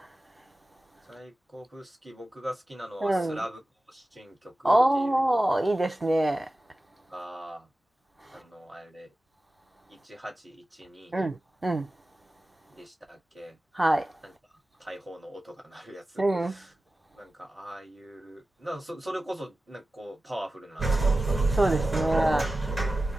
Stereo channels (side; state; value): both; normal; correlation 0.95